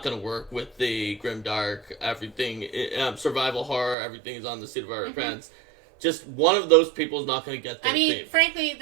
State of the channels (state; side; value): drops out; left; at 4.0 s